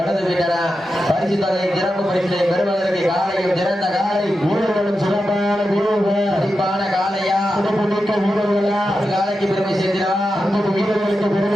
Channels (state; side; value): normal; both; correlation 0.89